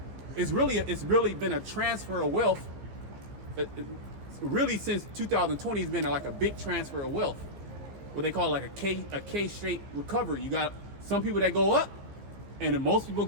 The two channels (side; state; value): left; late; 15 ms